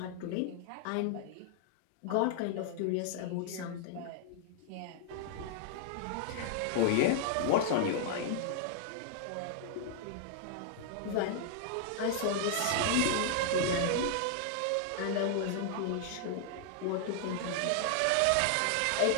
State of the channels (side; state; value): both; different; correlation -0.01